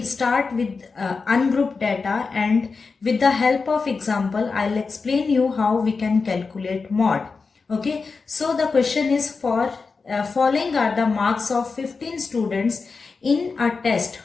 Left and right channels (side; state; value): right; quieter; 4.6 dB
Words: start with ungrouped data, and with the help of example I'll explain you how we can calculate mod. Okay, so the question is for following are the marks of 15 students in a test.